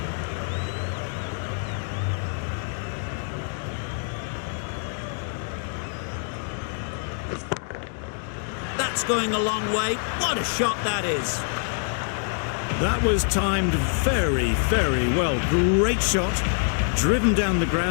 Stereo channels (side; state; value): right; silent; 61 dB below the other